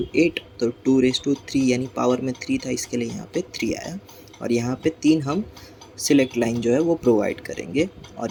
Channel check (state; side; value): identical; both; correlation 1.00